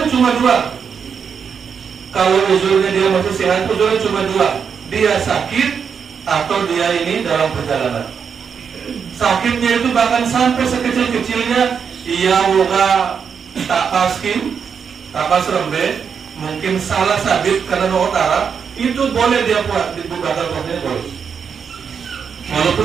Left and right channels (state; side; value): quieter; left; 6.7 dB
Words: tuh cuma dua. Kalau uzurnya dia masih sehat, uzurnya cuma dua. Dia sakit atau dia ini dalam perjalanan. Sakitnya itu bahkan sampai sekecil-kecilnya ia woga tapaskin, tapas rembe, mungkin salah sabit karena utara, itu boleh dia buat dibukakan puasanya boleh. Walaupun